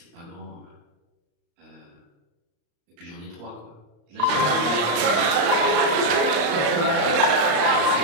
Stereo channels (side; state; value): left; late; 34 ms